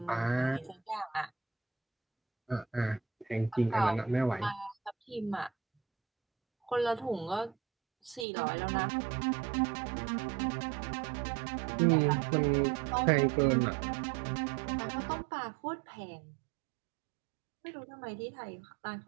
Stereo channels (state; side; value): drops out; left; at 8.2 s